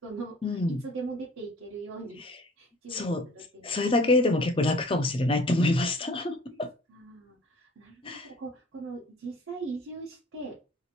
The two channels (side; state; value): both; normal; correlation 0.50